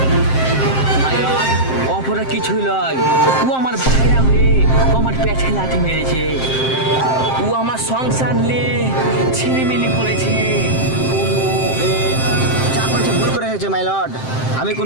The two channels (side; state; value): right; late; 7.6 ms